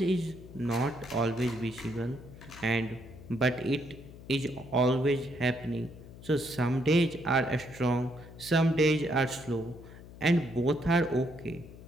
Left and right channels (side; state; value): left; noise; hum, 17 dB below the sound